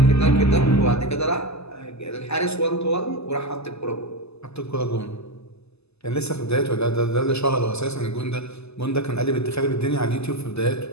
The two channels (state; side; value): late; right; 0.79 ms